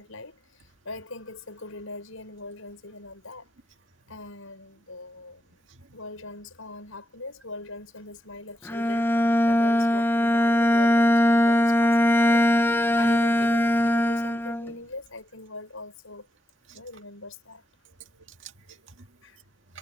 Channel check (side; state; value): both; normal; correlation 0.86